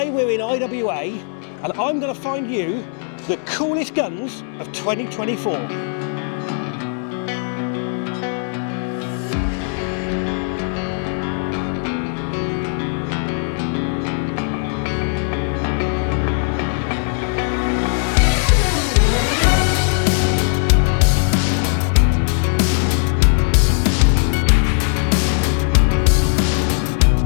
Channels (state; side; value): silent; right; 61 dB below the other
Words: we're in IWA and I'm going to find you the coolest guns of 2024.